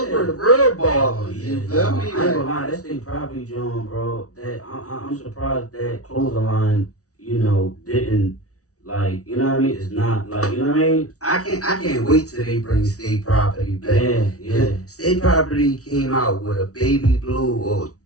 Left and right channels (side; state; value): right; late; 0.66 ms